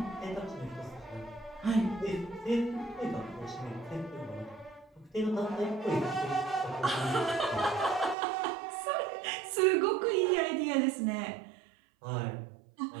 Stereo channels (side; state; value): left; drops out; at 8.2 s